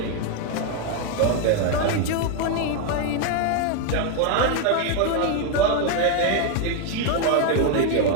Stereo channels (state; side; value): different; both; correlation 0.01